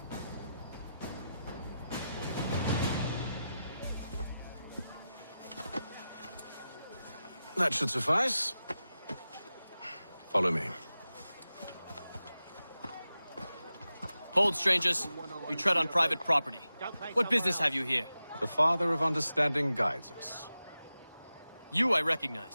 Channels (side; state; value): both; inverted; correlation -0.92